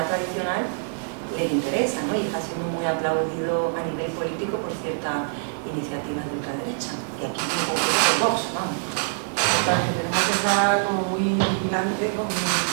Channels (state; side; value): silent; left; digital silence